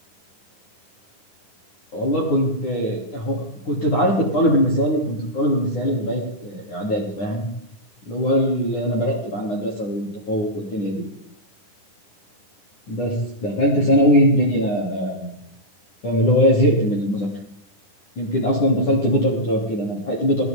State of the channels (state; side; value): late; right; 9.9 ms